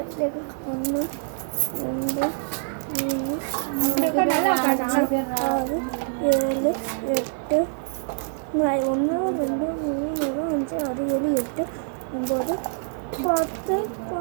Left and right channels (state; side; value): silent; left; digital silence